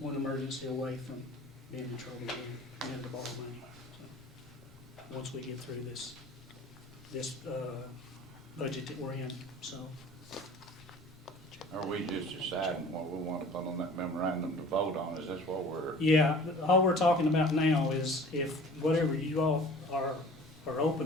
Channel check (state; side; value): normal; both; correlation 0.45